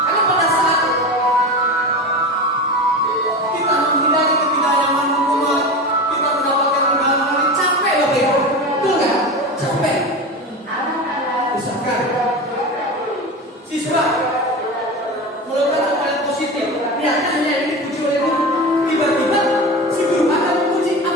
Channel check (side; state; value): both; normal; correlation 0.26